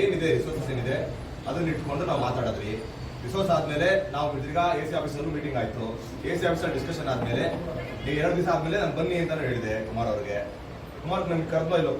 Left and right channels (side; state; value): both; identical; correlation 1.00